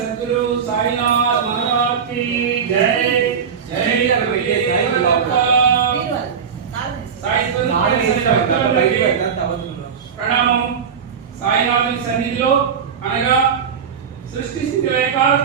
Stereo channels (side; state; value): left; quieter; 6.9 dB